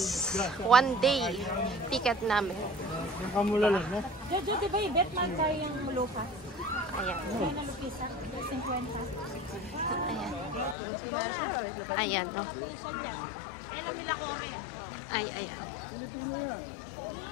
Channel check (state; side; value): drops out; right; at 10.8 s